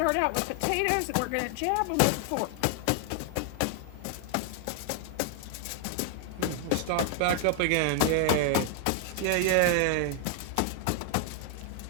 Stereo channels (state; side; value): different; both; correlation 0.00